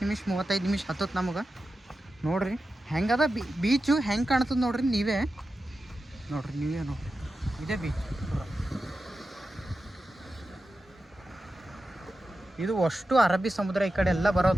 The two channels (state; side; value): normal; both; correlation 0.92